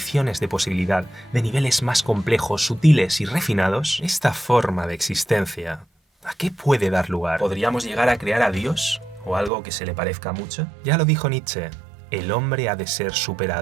de posibilidad de niveles más complejos, sutiles y refinados, esta forma de existencia, ¿a qué puede dar lugar? ¿Podríamos llegar a crear a Dios? ¿O algo que se le parezca mucho? Ya lo dijo Nietzsche, el hombre ha de ser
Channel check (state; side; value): drops out; left; at 9.5 s